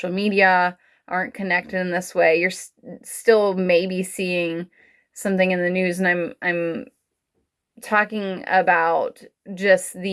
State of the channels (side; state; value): both; identical; correlation 1.00